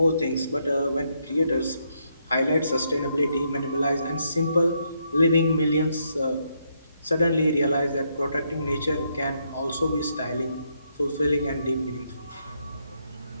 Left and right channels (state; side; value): inverted; both; correlation -0.76